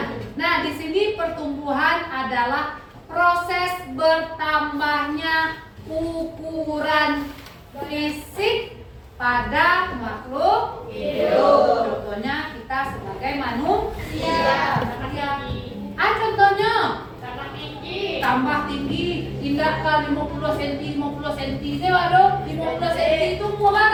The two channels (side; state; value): both; identical; correlation 1.00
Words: Nah, di sini pertumbuhan adalah proses bertambahnya ukuran fisik pada makhluk hidup. Contohnya kita sebagai manusia. Contohnya tambah tinggi, indah ke 50 cm, 50 cm. Saya waduh, 50 cm itu mau